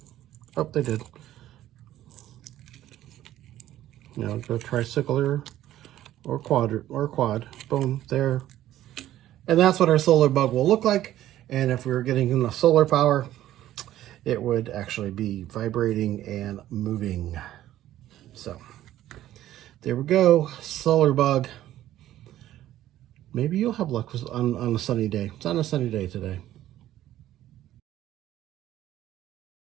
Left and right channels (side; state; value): left; quieter; 13.3 dB